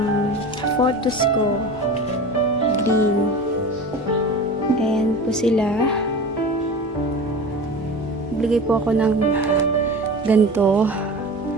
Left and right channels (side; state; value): both; normal; correlation 0.33